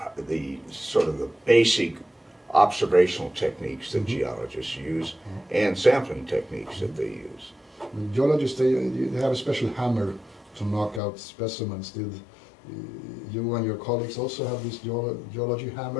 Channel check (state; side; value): drops out; right; at 11.0 s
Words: sort of the basic observational techniques that geologists use and sampling techniques that they use. Geologists, they have a special hammer to knock out specimens. Did you and your colleagues also have this geology